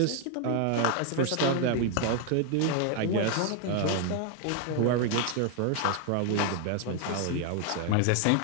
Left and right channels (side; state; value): both; different; correlation 0.00